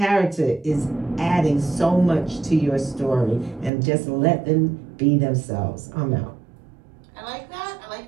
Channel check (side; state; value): left; drops out; at 3.7 s